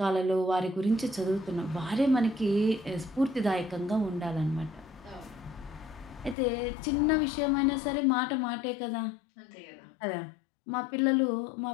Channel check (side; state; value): right; drops out; at 6.4 s